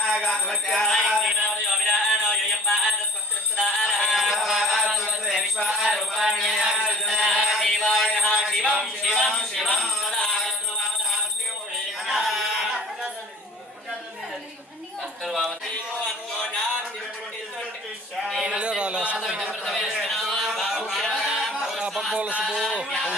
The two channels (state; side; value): normal; both; correlation 0.48